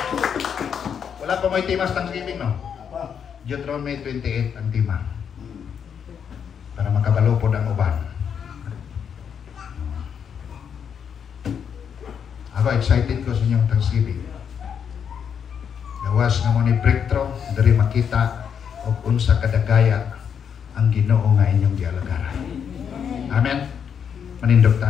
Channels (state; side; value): quieter; right; 7.6 dB